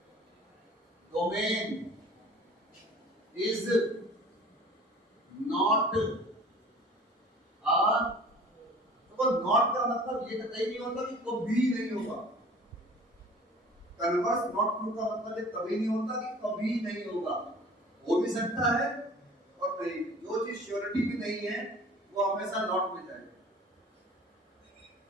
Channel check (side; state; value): both; normal; correlation 0.46